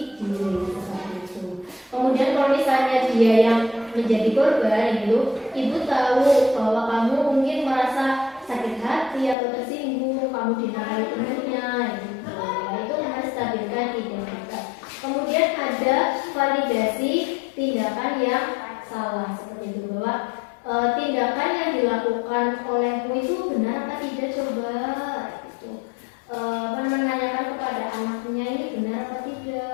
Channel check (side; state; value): right; drops out; at 9.3 s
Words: diri seperti itu. Kemudian kalau misalnya dia yang menjadi korban itu, ibu tahu bahwa kamu mungkin merasa sakit hati atau tersinggung, kamu dinamai temannya, gitu. Ya, itu menstabilkan identitas. Kemudian ada validasi tindakan yang salah seperti itu, bahwa tindakan yang dilakukan olehmu itu benar apa tidak, coba gitu. Menanyakan kepada anaknya ini benar apa